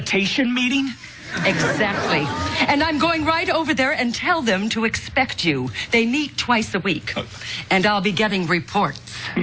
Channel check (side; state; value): both; identical; correlation 1.00